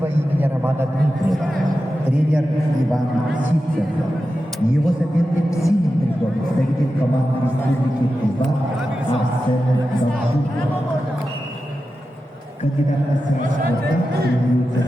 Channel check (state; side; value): normal; both; correlation 0.91